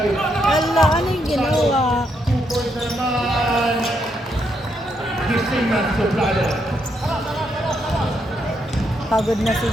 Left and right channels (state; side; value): normal; both; correlation 0.78